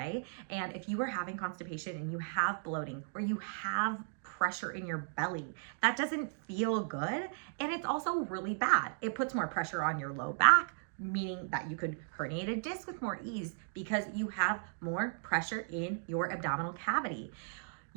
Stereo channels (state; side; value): silent; left; digital silence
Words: And if you are having constipation and you have bloating or you have pressure in your belly, that doesn't feel good. And it's also really bad. It puts more pressure on your low back, meaning that you could herniate a disc with more ease because you have more pressure in your abdominal cavity.